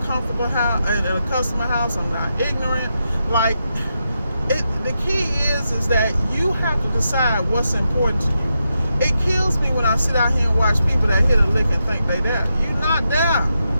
comfortable house, in a customer house, I'm not ignorant. Like, the key is that you have to decide what's important to you. It kills me when I sit out here and watch people that hit a lick and think they there. You're not there.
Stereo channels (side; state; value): both; inverted; correlation -0.86